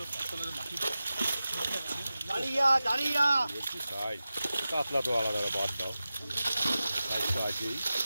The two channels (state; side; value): inverted; both; correlation -0.94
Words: দাঁড়িয়া দাঁড়িয়া। বলছি সাইজ, কাতলা তো আলাদা বাদ দাও, সাইজ তো আছেই।